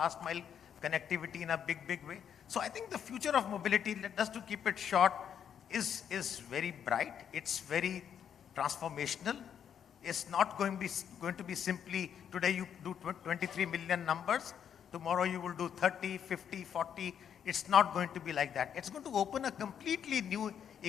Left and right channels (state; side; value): quieter; right; 8.5 dB